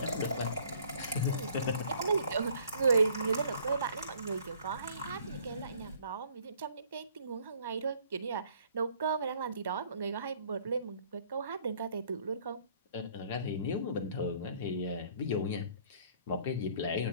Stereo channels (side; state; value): both; inverted; correlation -0.58